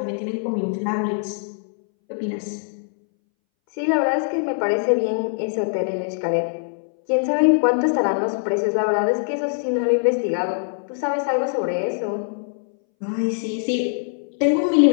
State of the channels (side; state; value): right; silent; 62 dB below the other